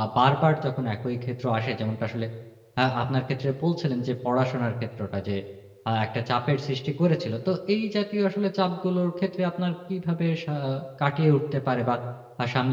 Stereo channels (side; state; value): both; identical; correlation 1.00